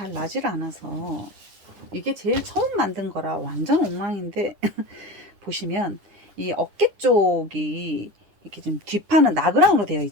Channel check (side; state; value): left; late; 10 ms